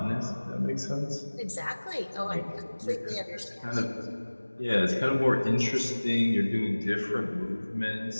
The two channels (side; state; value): both; inverted; correlation -1.00